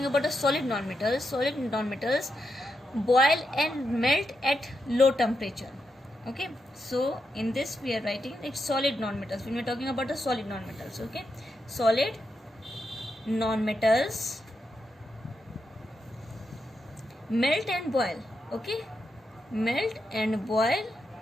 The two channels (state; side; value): normal; both; correlation 0.85